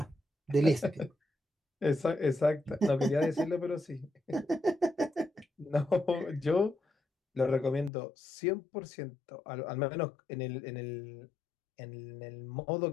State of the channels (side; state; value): right; drops out; at 7.9 s